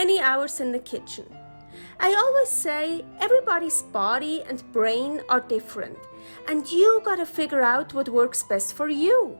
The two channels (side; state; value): both; inverted; correlation -1.00